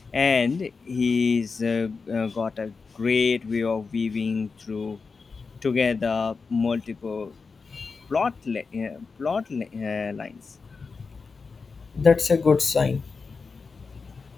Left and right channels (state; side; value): quieter; right; 4.7 dB